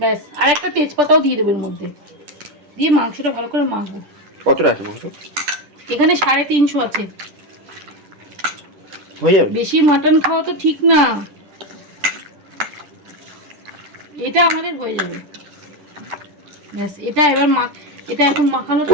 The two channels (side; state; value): left; late; 10 ms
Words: আর একটা তেজপাতাও দিয়ে দেবো এর মধ্যে, দিয়ে মাংসটা ভালো করে মাখবো। কতটা আছে মাংস? এখানে 350 আছে। হয়ে যাবে? বেশি মাটন খাওয়া তো ঠিক না, এটা আমাদের হয়ে যাবে, ব্যাস। এটা এবার এটা এখন মাখানো।